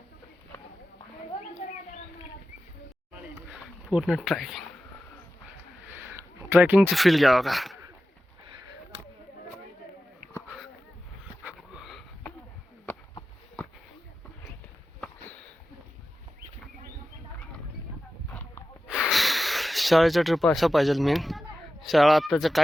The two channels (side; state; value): both; normal; correlation 0.93